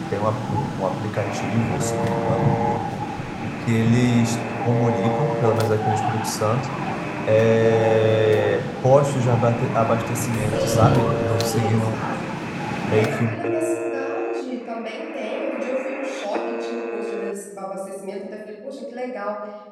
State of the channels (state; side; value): identical; both; correlation 1.00